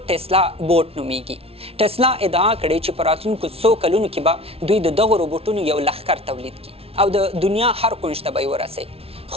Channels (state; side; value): late; left; 0.28 ms